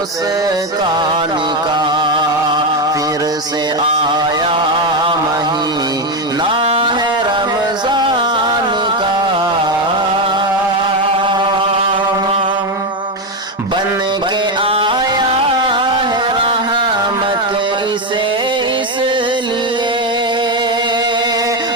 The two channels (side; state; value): both; normal; correlation 0.10